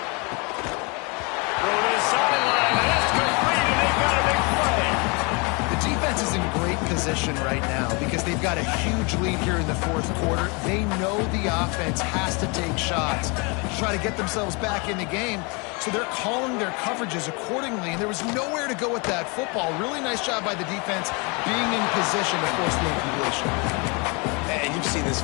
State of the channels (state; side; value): quieter; right; 30.6 dB